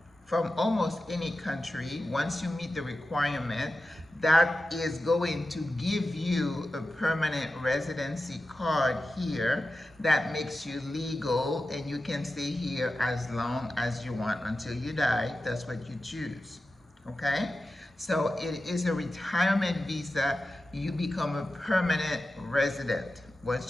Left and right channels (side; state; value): both; normal; correlation 0.93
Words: from almost any country. Once you meet the requirement, that is going to give you a permanent residency card here that makes you legal, and you can stay here as long as you want until you die. That's what you choose. Okay? So it is a retirement visa. You become a permanent resident